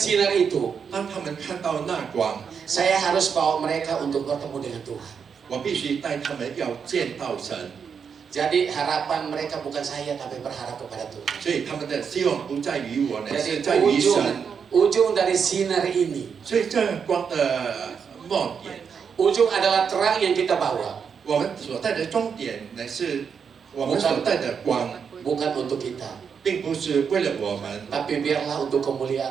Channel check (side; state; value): left; quieter; 6.6 dB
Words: itu, 当他们看到那光， saya harus bawa mereka untuk bertemu dengan Tuhan. 我必须带他们要见到神。 Jadi harapan mereka bukan saya tapi berharap kepada Tuhan. 所以他们的希望不在于我呢， Jadi 是在于神。 ujung dari sinar ini, 所以这光的末点， ujung adalah terang yang kita bawa, 我们所带的终点呢，是我们所带的光， bukan untuk kita, 并不是为了我们， tapi biarlah untuk